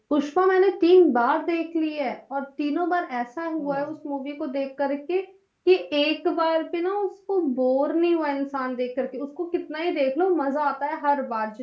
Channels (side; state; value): both; identical; correlation 1.00